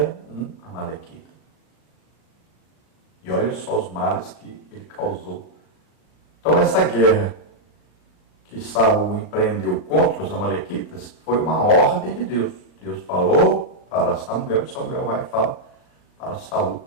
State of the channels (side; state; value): right; late; 37 ms